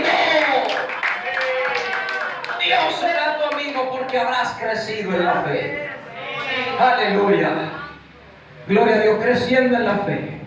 Dios será tu amigo porque habrás crecido en la fe. Aleluya. Gloria a Dios. Creciendo en la fe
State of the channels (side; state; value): both; identical; correlation 1.00